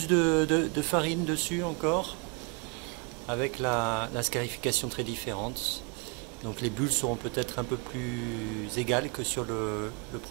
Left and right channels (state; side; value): quieter; left; 31.1 dB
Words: de farine dessus encore, avec la scarification très différente. Donc les bulles seront peut-être un peu plus égales que sur le